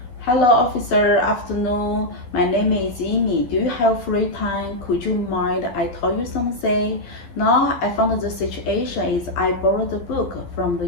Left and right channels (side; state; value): right; late; 12 ms